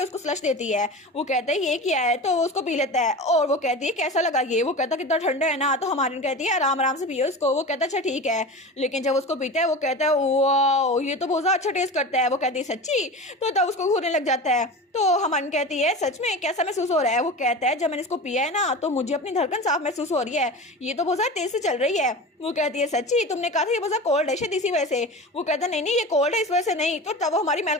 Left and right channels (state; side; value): normal; both; correlation 0.31